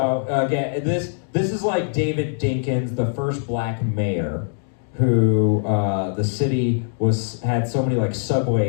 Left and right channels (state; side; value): silent; right; digital silence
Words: again, this is like David Dinkins, the first black mayor, who the city had so many like